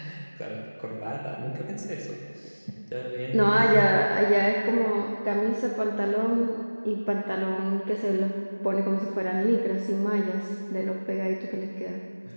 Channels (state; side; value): inverted; both; correlation -1.00